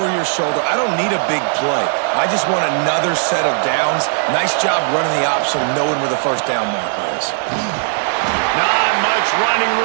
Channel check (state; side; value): silent; left; digital silence